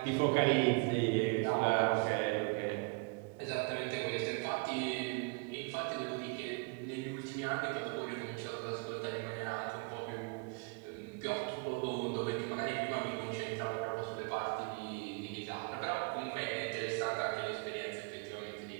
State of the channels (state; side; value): quieter; left; 31.9 dB